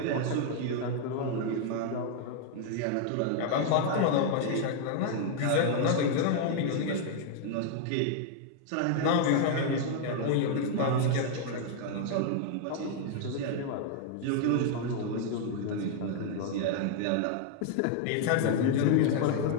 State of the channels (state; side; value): different; both; correlation 0.00